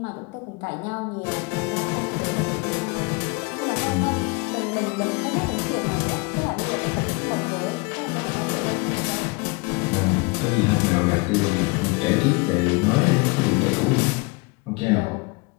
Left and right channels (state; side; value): quieter; right; 27.8 dB